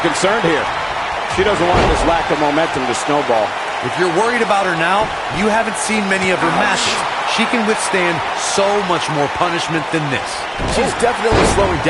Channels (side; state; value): both; identical; correlation 1.00